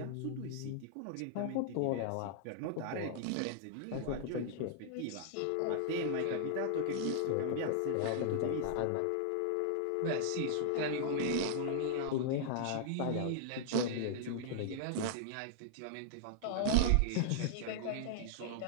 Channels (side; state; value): both; different; correlation -0.01